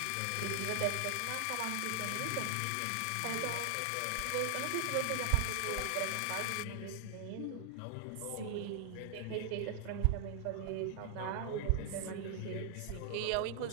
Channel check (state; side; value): different; both; correlation -0.01